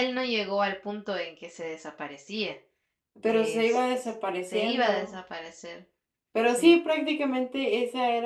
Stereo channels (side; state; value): both; identical; correlation 1.00